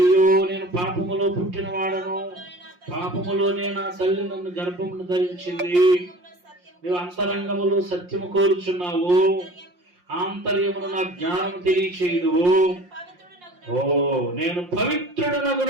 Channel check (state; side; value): late; left; 5.6 ms